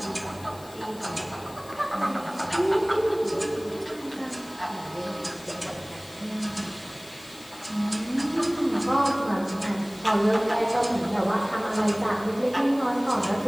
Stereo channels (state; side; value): noise; left; hiss, 21 dB below the sound